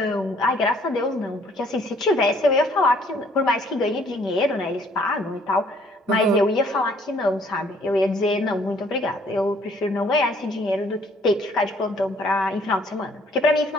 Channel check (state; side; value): normal; both; correlation 0.61